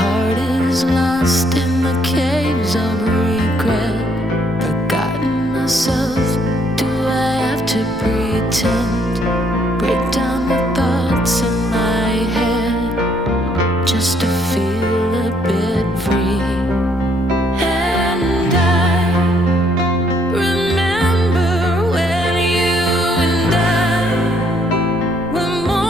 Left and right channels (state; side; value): noise; left; rumble, 18 dB below the sound